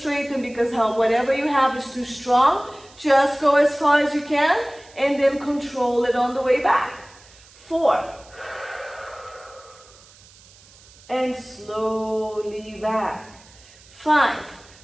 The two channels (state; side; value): noise; right; hiss, 25 dB below the sound